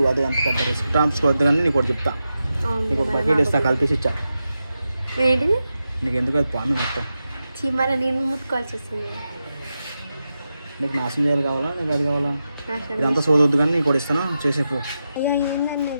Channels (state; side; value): inverted; both; correlation -0.90